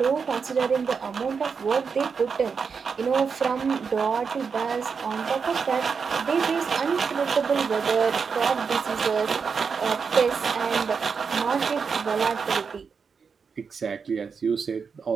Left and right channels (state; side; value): quieter; left; 5.7 dB